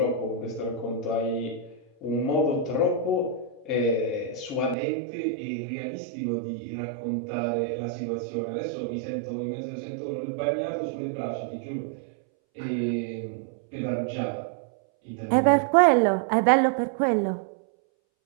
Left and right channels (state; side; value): drops out; left; at 4.8 s